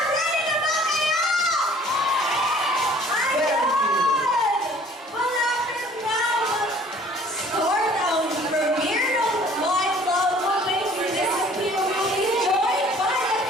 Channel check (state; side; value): normal; both; correlation 0.53